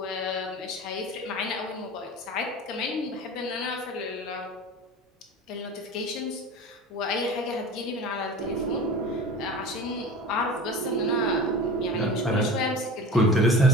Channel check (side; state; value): both; normal; correlation 0.35